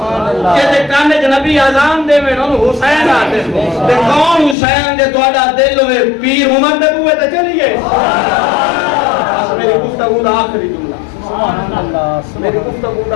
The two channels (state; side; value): drops out; right; at 4.5 s